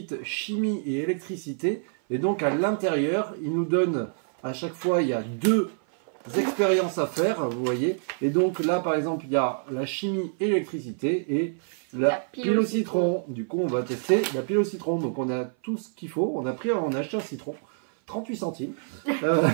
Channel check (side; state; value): left; silent; 58 dB below the other